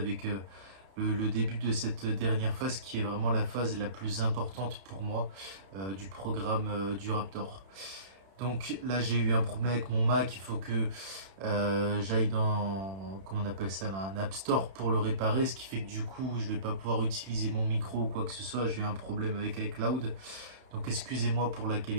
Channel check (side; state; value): left; late; 31 ms